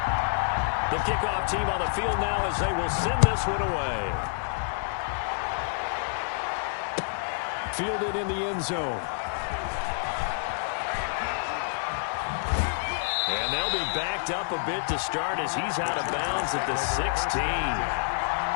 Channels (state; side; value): silent; right; 59 dB below the other